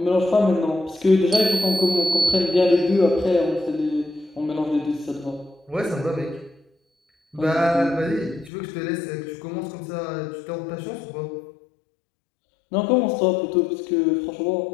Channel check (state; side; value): drops out; right; at 8.5 s